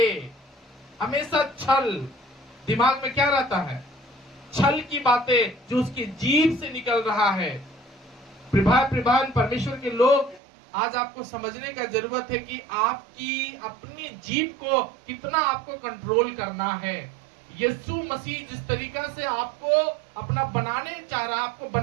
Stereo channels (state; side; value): drops out; left; at 10.4 s